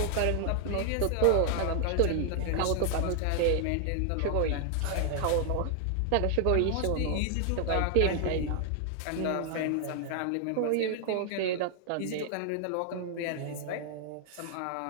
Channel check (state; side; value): different; both; correlation 0.00